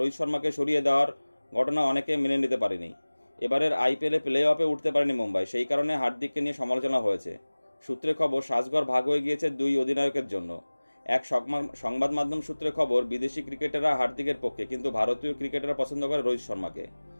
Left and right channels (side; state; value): both; inverted; correlation -1.00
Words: শর্মাকে সরিয়ে দেওয়ার ঘটনা অনেকে মেনে নিতে পারেনি। এবারের আইপিএলে প্লে অফে উঠতে পারেনি মুম্বাই, সেই কারণে হার্দিককে নিয়ে সমালোচনা হয়েছে। সূত্রে খবর, সাজঘর ভাগ হয়ে গিয়েছে দুই অধিনায়কের জন্য। এক সংবাদ মাধ্যম সূত্রে খবর, বিদেশি ক্রিকেটাররা হার্দিকের পক্ষে, কিন্তু ভারতীয় ক্রিকেটাররা পছন্দ করে রোহিত শর্মাকে।